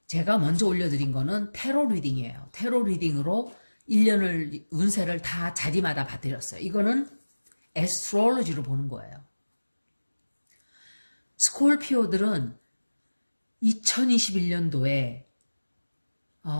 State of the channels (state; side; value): inverted; both; correlation -1.00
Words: 제가 먼저 올려드린 거는 테로 리딩이에요. 테로 리딩으로 1년을 운세를 다 자리마다 봐드렸어요. 이거는 애스트롤로지로 보는 거예요. 스콜피오들은 2021년도에